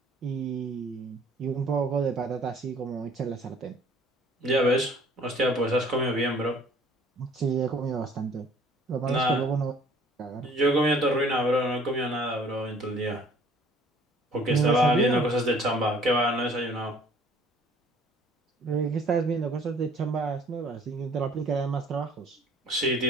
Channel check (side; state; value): both; normal; correlation 0.55